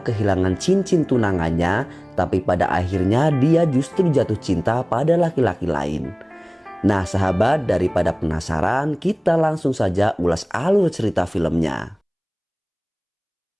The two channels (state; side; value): identical; both; correlation 1.00